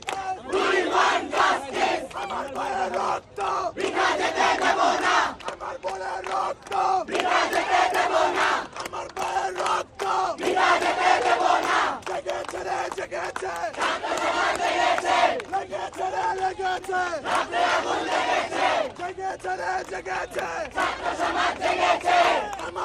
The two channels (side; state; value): both; identical; correlation 1.00